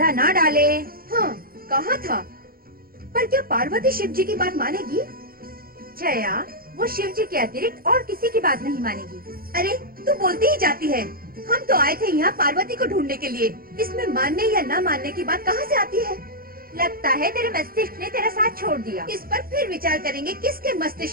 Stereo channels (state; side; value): late; left; 0.43 ms